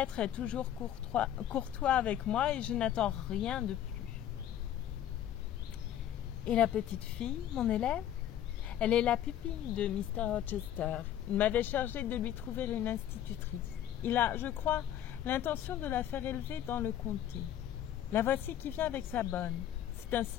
est toujours courtois avec moi et je n'attends rien de plus. Et la petite fille, mon élève? Elle est la pupille de Mr. Rochester. Il m'avait chargé de lui trouver une institutrice. Il a, je crois, l'intention de la faire élever dans le comté. La voici qui vient avec sa bonne. C'est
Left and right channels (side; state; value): right; quieter; 11.1 dB